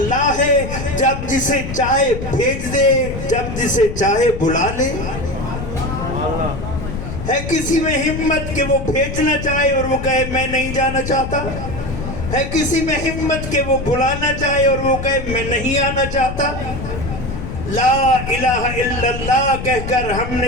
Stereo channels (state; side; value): noise; left; rumble, 7 dB below the sound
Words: ہے. جب جسے چاہے بھیج دے جب جسے چاہے بلا لے. ہے کسی میں ہمت کہ وہ بھیجنا چاہے اور وہ کہے میں نہیں جانا چاہتا؟ ہے کسی میں ہمت کہ وہ بلانا چاہے اور وہ کہے میں نہیں آنا چاہتا؟ لا الہ الا اللہ کہہ کر ہم